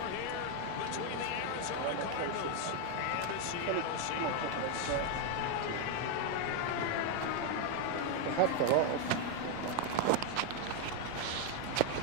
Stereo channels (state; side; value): different; both; correlation 0.01